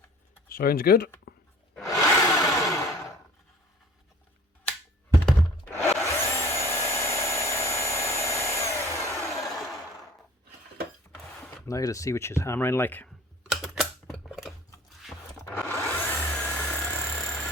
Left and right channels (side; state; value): both; normal; correlation 0.49